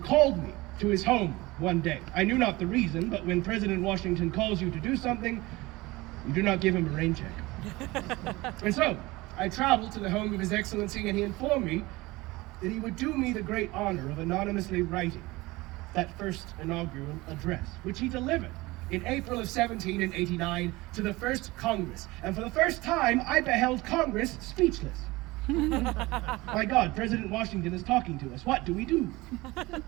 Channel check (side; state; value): left; quieter; 21.0 dB